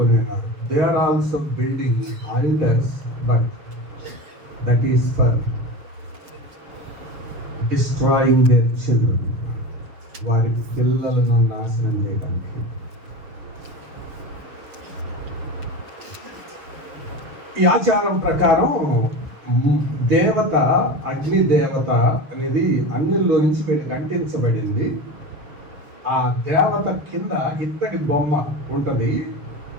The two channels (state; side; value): late; left; 6.7 ms